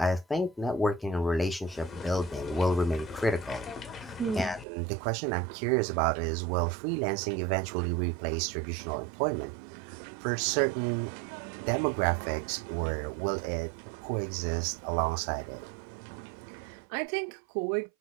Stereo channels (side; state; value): left; drops out; at 4.7 s